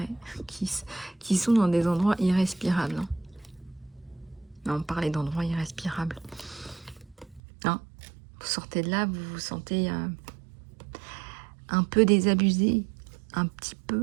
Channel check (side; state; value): left; drops out; at 7.4 s